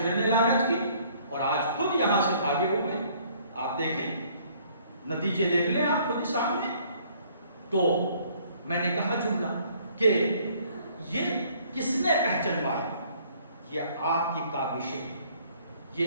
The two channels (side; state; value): both; inverted; correlation -0.60